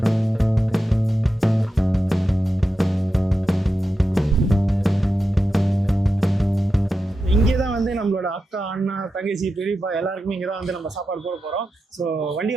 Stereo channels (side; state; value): both; normal; correlation 0.90